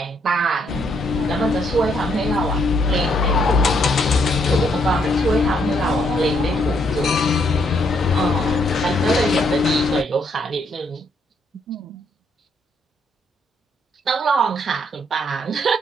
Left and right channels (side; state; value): both; normal; correlation 0.72